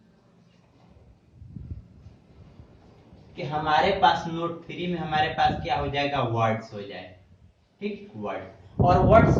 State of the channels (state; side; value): identical; both; correlation 1.00